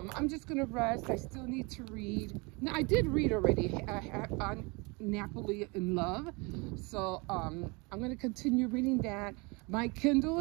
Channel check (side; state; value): left; quieter; 28.2 dB